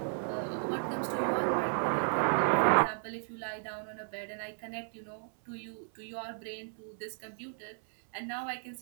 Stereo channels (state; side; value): silent; left; 55 dB below the other